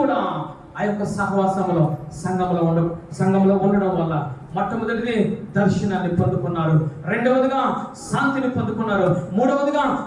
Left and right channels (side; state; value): both; identical; correlation 1.00